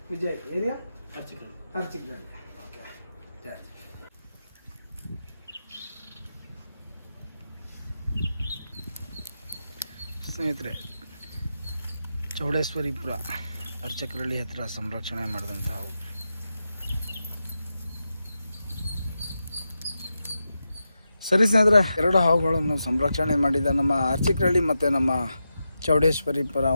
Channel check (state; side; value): inverted; both; correlation -0.89